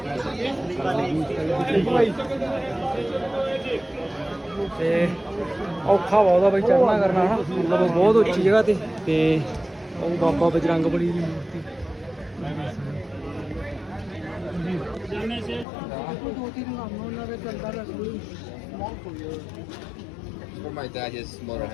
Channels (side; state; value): right; drops out; at 15.7 s